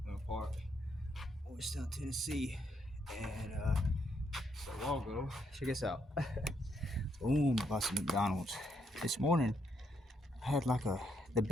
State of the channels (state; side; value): normal; both; correlation 0.75